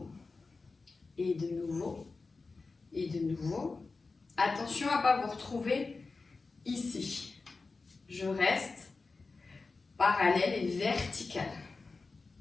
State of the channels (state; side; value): quieter; right; 4.0 dB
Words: et de nouveau, et de nouveau. Attention à ne pas vous retrouver ici. Je reste parallèle et vertical.